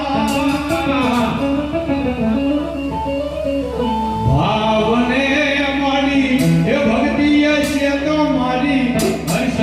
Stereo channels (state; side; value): identical; both; correlation 1.00